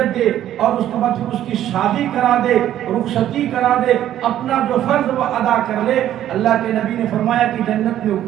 دے اور اس کے بعد پھر اس کی شادی کرا دے، رخصتی کرا دے، اپنا جو فرض وہ ادا کر لے، اللہ کے نبی نے فرمایا کہ جنت میں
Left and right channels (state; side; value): quieter; left; 11.8 dB